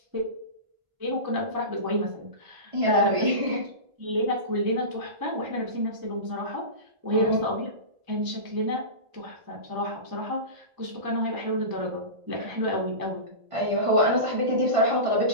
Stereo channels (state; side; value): late; left; 1.4 ms